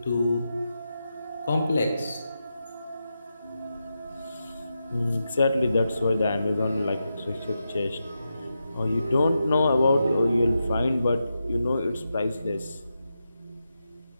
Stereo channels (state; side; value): inverted; both; correlation -0.88